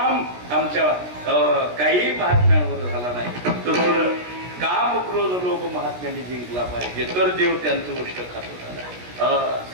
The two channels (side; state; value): left; late; 16 ms